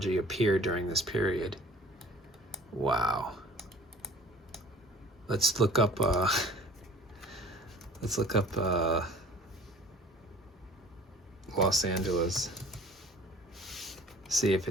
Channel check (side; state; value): both; normal; correlation 0.48